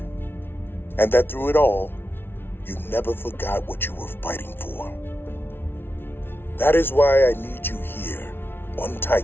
and that through it all, you never forgot what you were fighting for. That is why I need you here on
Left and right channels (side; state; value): right; late; 0.11 ms